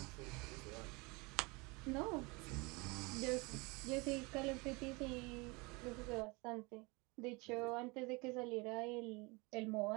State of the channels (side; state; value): left; quieter; 26.9 dB